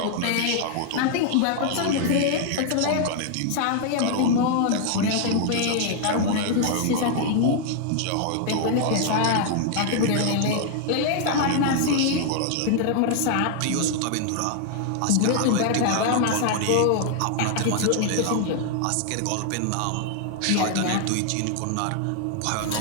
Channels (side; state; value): both; different; correlation 0.00